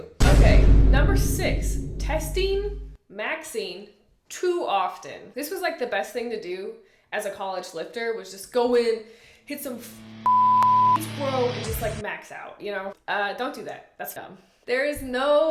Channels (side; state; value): both; identical; correlation 1.00